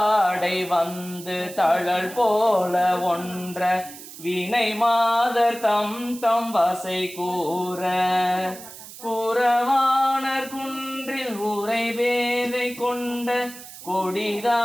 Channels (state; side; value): noise; right; hiss, 15 dB below the sound